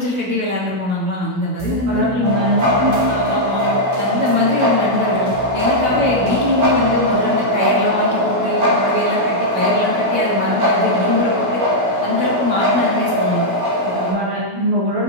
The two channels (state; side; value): late; left; 16 ms